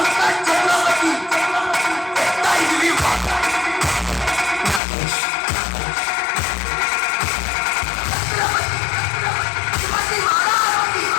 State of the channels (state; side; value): drops out; right; at 4.8 s